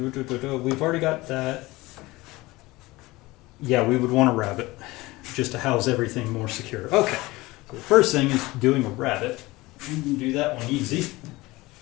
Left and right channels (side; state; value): right; quieter; 20.6 dB